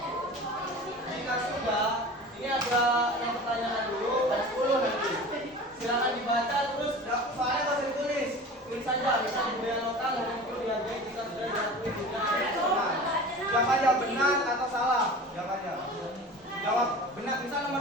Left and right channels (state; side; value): normal; both; correlation 0.37